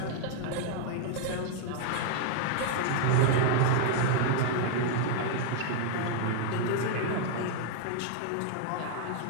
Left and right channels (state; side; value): different; both; correlation 0.00